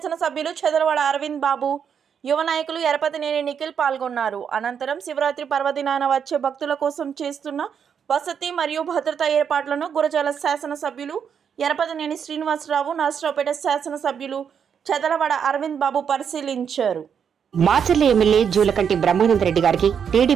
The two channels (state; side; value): quieter; left; 7.5 dB